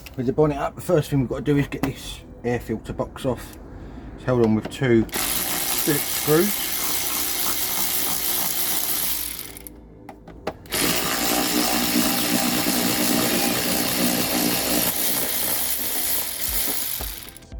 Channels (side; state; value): both; identical; correlation 1.00